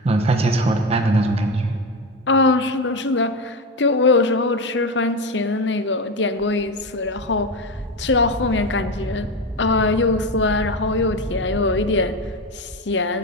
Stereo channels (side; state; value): both; normal; correlation 0.18